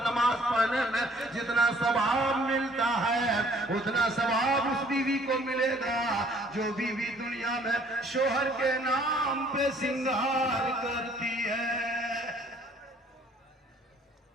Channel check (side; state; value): both; normal; correlation 0.59